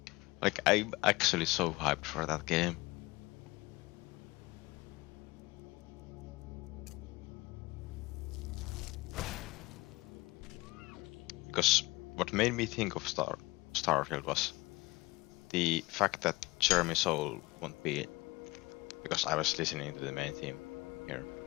Like, I'm actually so hyped for that game. Because what made me think of Starfield was the fact that Jeremy Soule won't be, because I was listening to the main theme here,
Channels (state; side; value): quieter; right; 22.0 dB